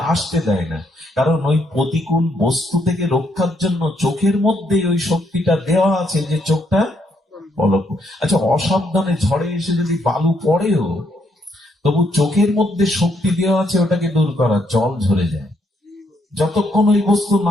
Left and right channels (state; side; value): normal; both; correlation 0.74